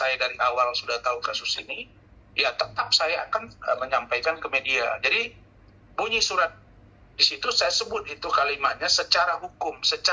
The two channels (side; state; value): both; identical; correlation 1.00